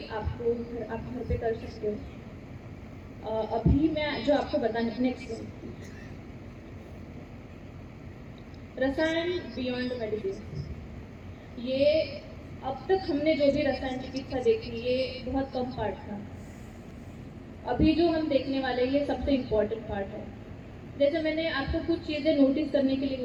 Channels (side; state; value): both; identical; correlation 1.00